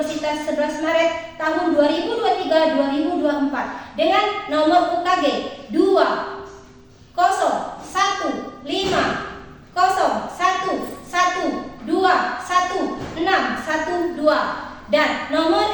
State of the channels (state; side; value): identical; both; correlation 1.00